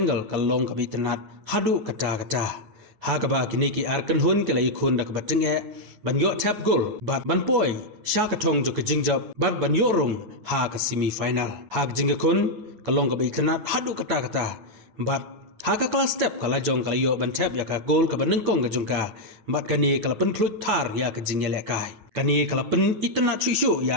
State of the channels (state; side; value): late; left; 9.2 ms